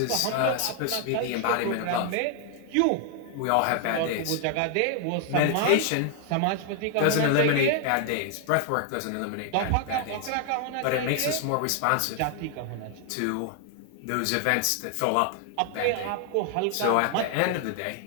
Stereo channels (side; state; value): both; different; correlation 0.00